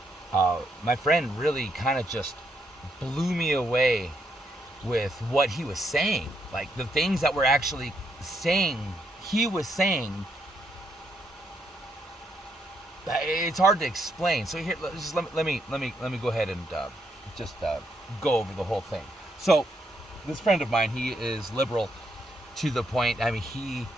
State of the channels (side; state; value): both; normal; correlation 0.76